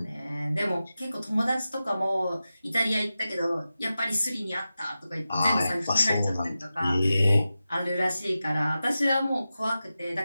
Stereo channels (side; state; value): both; inverted; correlation -0.93